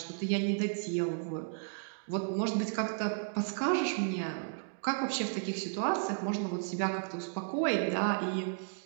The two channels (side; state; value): left; silent; digital silence